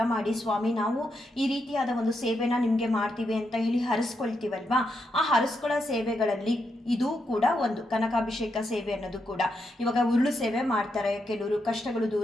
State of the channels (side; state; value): both; normal; correlation 0.82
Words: ಮಾಡಿ ಸ್ವಾಮಿ ನಾವು ಈ ರೀತಿಯಾದ ಒಂದು ಸೇವೆನ ನಿಮಗೆ ಮಾಡ್ತೀವಿ ಅಂತ ಹೇಳಿ ಹರಿಸ್ಕೊಳ್ತೀವಲ್ವಾ, ಆ ಹರಿಸ್ಕೊಳ್ಳೋ ಸೇವೆಗಳಲ್ಲಿ ಇದು ಕೂಡ ಒಂದು ಕನಕಾಭಿಷೇಕ ಸೇವೆ ಅನ್ನೋದು ಕೂಡ. ಇವಾಗ ಉರುಳು ಸೇವೆ ಮಾಡ್ತಾರೆ ಕೆಲವರು, ಕಷ್ಟಗಳು